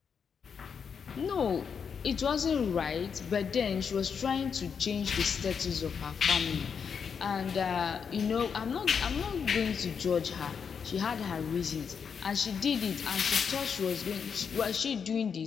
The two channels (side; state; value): right; quieter; 6.6 dB